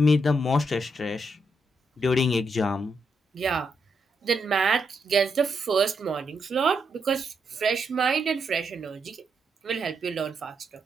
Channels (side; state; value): both; normal; correlation 0.80